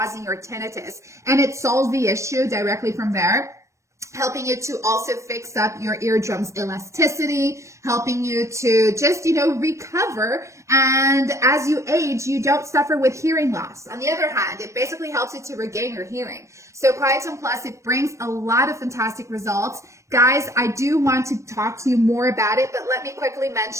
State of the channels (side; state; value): left; late; 0.15 ms